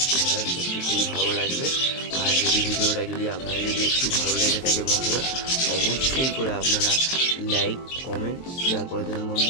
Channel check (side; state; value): right; late; 23 ms